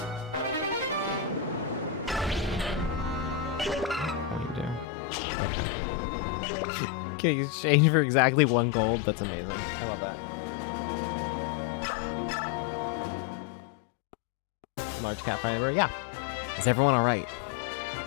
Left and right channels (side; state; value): right; drops out; at 4.9 s